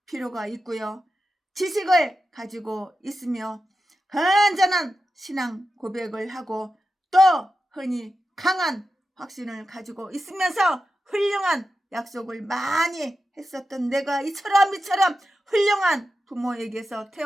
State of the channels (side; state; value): both; normal; correlation 0.91